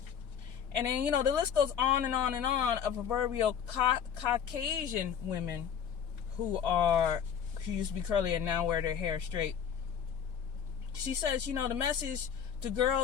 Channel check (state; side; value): quieter; right; 8.1 dB